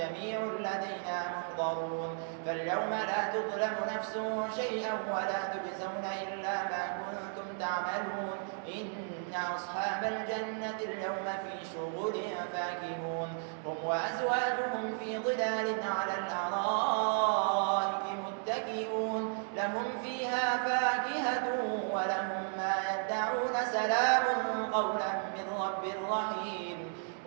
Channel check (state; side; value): silent; left; 55 dB below the other